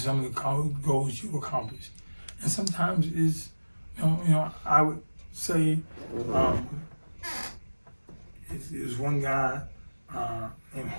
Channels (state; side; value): inverted; both; correlation -1.00